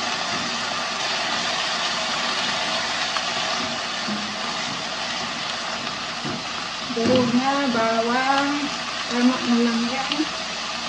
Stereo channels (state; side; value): identical; both; correlation 1.00